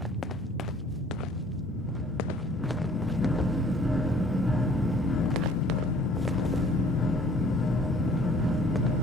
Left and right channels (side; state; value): both; normal; correlation 0.55